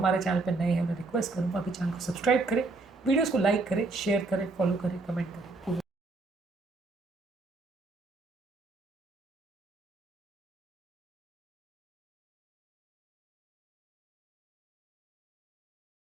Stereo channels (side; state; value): left; quieter; 3.5 dB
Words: चैनल पर नए हैं उन्हें रिक्वेस्ट करूँगा कि चैनल को सब्सक्राइब करें, वीडियोज़ को लाइक करें, शेयर करें, फॉलो करें, कमेंट करें।